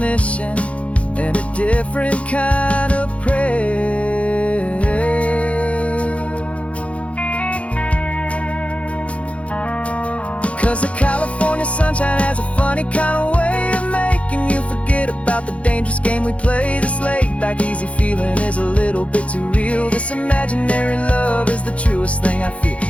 and a different kind of prayer. 'Cause the California sunshine has a funny kind of way of making you forget about the dangerous game we play. This laid back easy feeling is a little bit too real. This imaginary love is the truest thing I feel.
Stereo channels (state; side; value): late; right; 0.063 ms